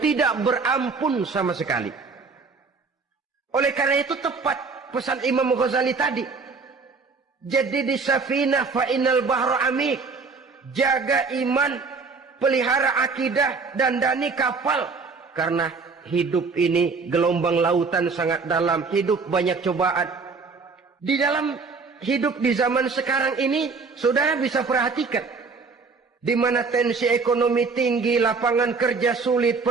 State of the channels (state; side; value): quieter; left; 4.6 dB